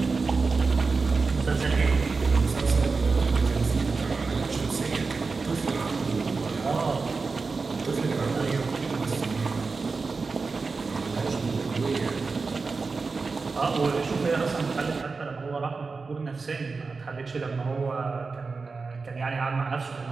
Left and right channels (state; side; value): quieter; left; 4.4 dB